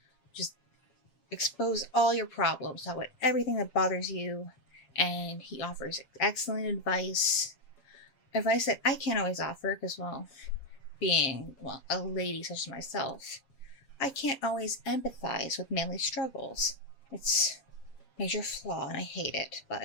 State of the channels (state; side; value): late; right; 7.4 ms